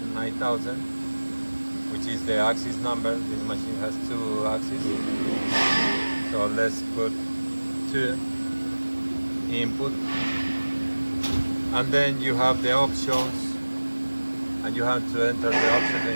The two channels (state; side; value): inverted; both; correlation -1.00